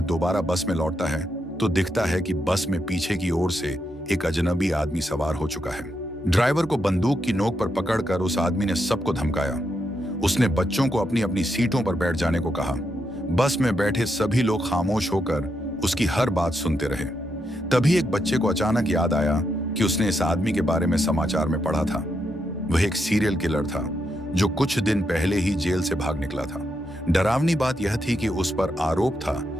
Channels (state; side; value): normal; both; correlation 0.82